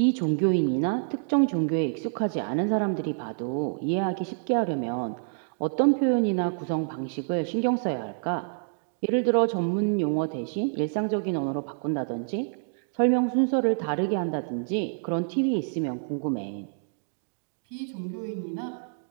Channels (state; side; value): silent; left; digital silence